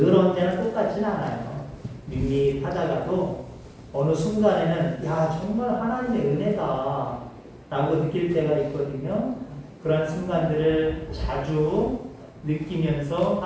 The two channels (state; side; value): identical; both; correlation 1.00